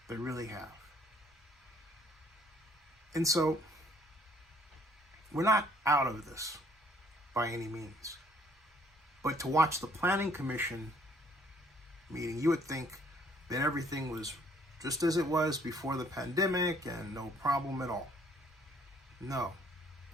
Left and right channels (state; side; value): normal; both; correlation 0.60